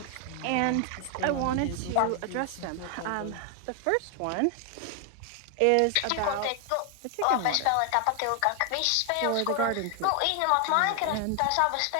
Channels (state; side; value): different; both; correlation 0.00